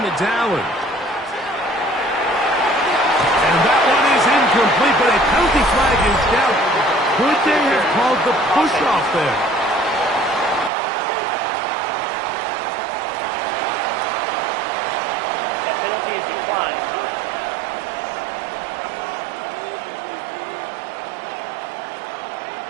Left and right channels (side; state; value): left; drops out; at 10.7 s